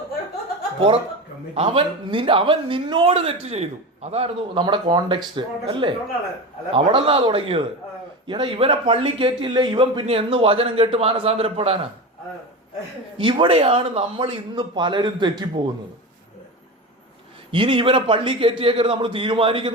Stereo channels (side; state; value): both; normal; correlation 0.25